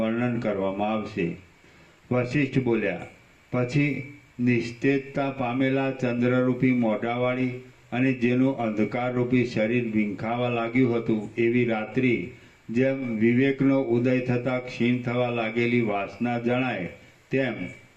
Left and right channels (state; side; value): identical; both; correlation 1.00